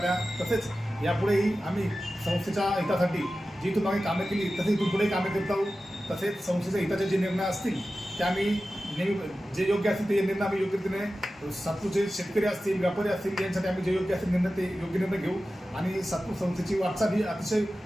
तसेच यापुढेही आम्ही संस्थेच्या हितासाठी जी इथून आम्ही कामे केली तसेच इथून पुढे कामे करत आहोत. तसेच संस्थेच्या हिताचे जे निर्णय असतील ते आम्ही नेहमी जे योग्य असतील ते निर्णय आम्ही योग्य रीतीने सातपूरचे शेतकरी असतील, व्यापारी असतील यांसाठी आम्ही जे योग्य असतील निर्णय ते योग्य निर्णय घेऊ आणि सातपूर संस्थेची वाटचाल ही अतिशय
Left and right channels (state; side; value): normal; both; correlation 0.94